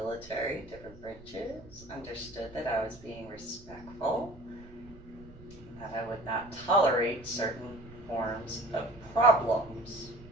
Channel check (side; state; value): right; noise; rumble, 20 dB below the sound